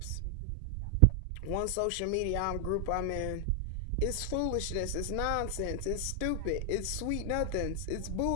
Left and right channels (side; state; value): both; different; correlation 0.00